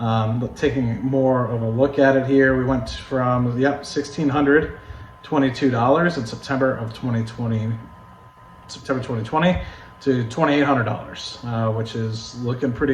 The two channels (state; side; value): identical; both; correlation 1.00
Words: taking more of a look at it here, we went from 1,600 $22 in September 2020 to $2,800, which is looking